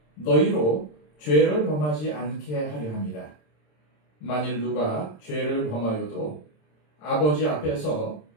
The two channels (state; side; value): late; right; 27 ms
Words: 너희로 죄를 범하지 않게 하려 함이라. 만일 누가 죄를 범하여도 아버지 앞에서